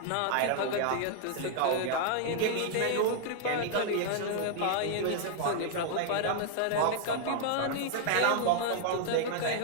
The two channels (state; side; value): different; both; correlation -0.01